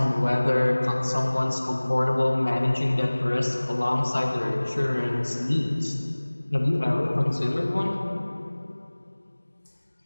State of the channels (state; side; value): inverted; both; correlation -1.00